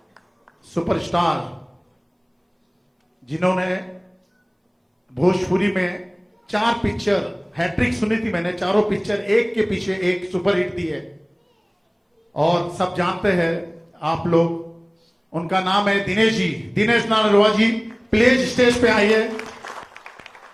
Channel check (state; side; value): identical; both; correlation 1.00